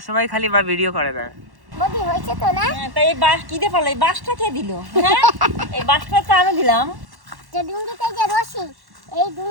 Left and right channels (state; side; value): late; left; 1.1 ms